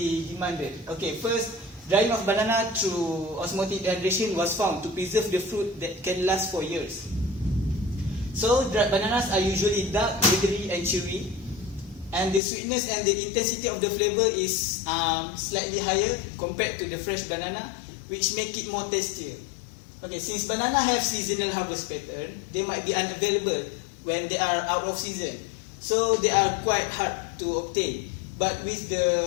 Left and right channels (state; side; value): drops out; right; at 12.4 s